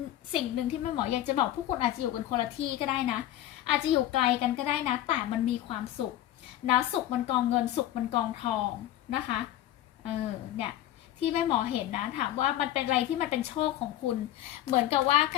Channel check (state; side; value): quieter; right; 13.3 dB